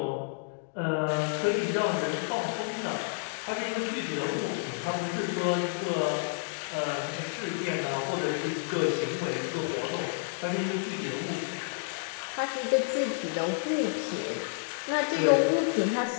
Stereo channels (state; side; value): silent; right; digital silence